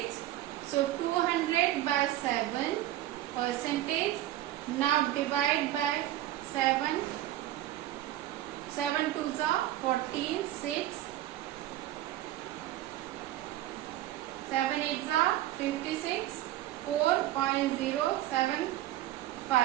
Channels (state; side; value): quieter; left; 14.3 dB